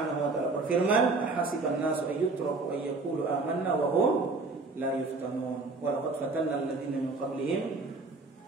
wa taala berfirman, "Ahasiban nasu ayyutraku ayyaqulu amanna wa hum la yuftanun. Wa laqad fatanna alladziina min qablihim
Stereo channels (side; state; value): left; quieter; 3.7 dB